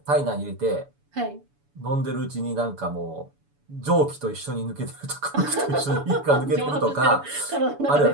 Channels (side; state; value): left; late; 7.0 ms